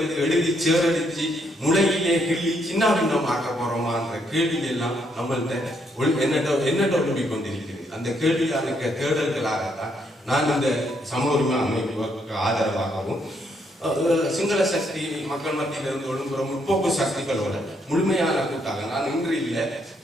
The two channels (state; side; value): normal; both; correlation 0.74